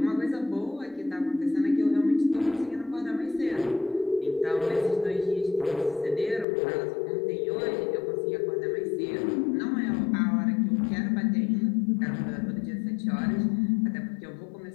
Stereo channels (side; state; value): right; drops out; at 6.5 s